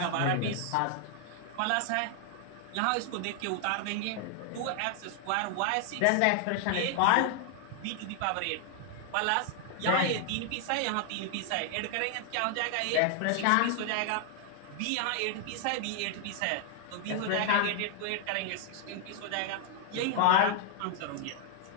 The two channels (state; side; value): different; both; correlation 0.00